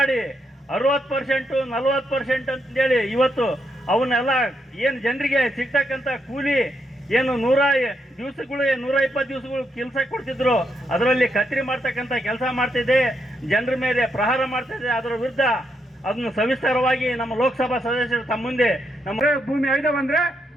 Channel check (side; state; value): both; normal; correlation 0.79